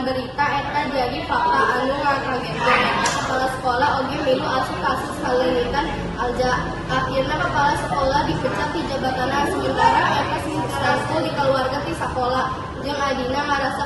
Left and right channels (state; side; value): identical; both; correlation 1.00